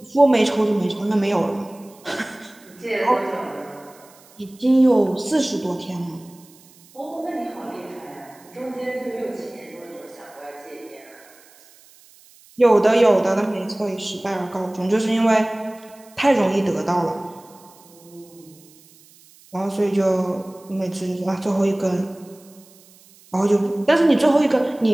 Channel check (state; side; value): noise; right; hiss, 26 dB below the sound